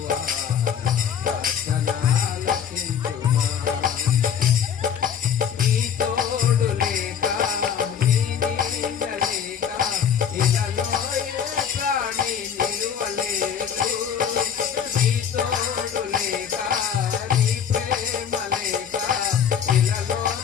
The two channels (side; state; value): right; quieter; 8.1 dB